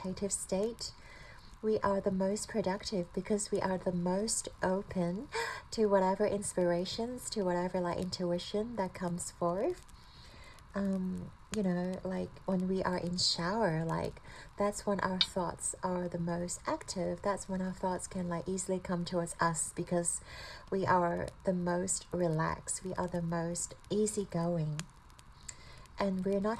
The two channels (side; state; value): both; identical; correlation 1.00